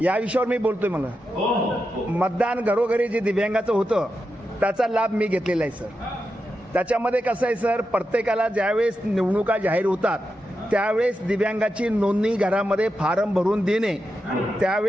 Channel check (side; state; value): both; normal; correlation 0.88